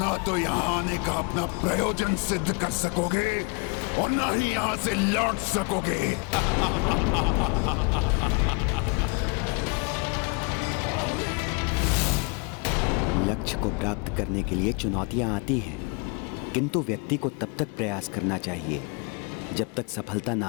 ना तो यहाँ आने का अपना प्रयोजन सिद्ध कर सकोगे और ना ही यहाँ से लौट सकोगे। लक्ष्य को प्राप्त करने के लिए चुनौतियां आती हैं, किंतु व्यक्ति को तब तक प्रयास करना चाहिए जब तक सफलता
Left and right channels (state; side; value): quieter; right; 32.8 dB